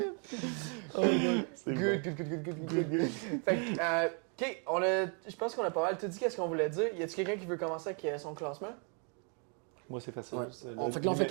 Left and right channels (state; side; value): quieter; left; 38.5 dB